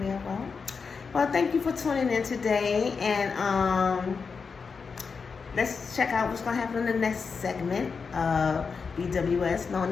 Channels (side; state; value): right; quieter; 5.3 dB